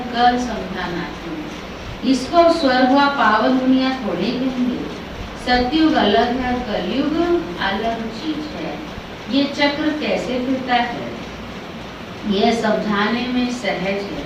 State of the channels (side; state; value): both; identical; correlation 1.00